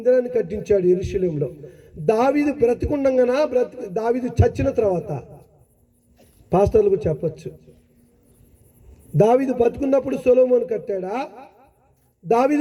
కట్టించాడు యెరూషలేములో. దావీదు బ్రతికుండగానా, దావీదు చచ్చిన తర్వాత? పాస్టర్లకు చెప్పొచ్చు. దావీదు బతుకున్నప్పుడు సొలొమోను కట్టాడా,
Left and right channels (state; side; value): identical; both; correlation 1.00